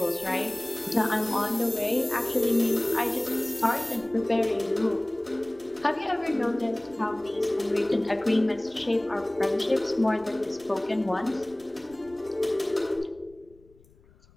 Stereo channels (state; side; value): noise; left; rumble, 28 dB below the sound